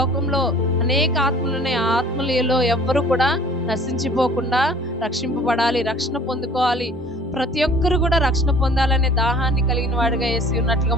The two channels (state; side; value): normal; both; correlation 0.50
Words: అనేక ఆత్మలు ఉన్నాయి. ఆ ఆత్మలలో ఎవ్వరు కూడా నశించిపోకుండా రక్షింపబడాలి, రక్షణ పొందుకోవాలి. ప్రతి ఒక్కరు కూడా రక్షణ పొందాలనే దాహాన్ని కలిగిన వాడిగా యేసు ఉన్నట్లుగా